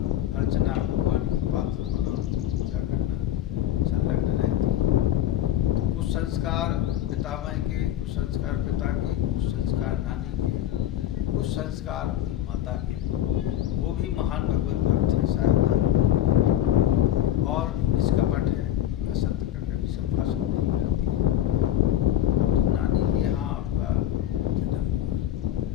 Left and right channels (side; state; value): right; quieter; 11.9 dB